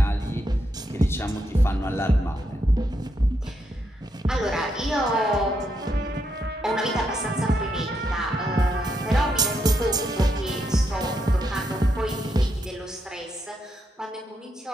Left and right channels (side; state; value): both; normal; correlation 0.80